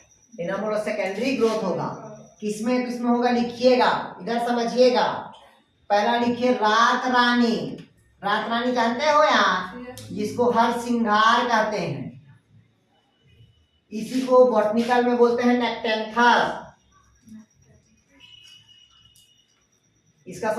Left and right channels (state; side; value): identical; both; correlation 1.00